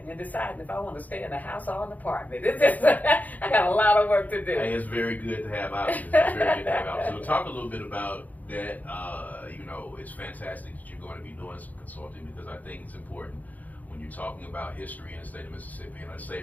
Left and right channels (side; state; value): right; late; 0.079 ms